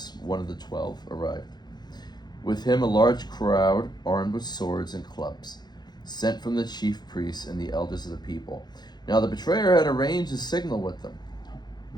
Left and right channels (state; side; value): late; right; 0.20 ms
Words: one of the 12, arrived. With him a large crowd armed with swords and clubs, sent from the chief priests and the elders of the people. Now the betrayer had arranged a signal with them.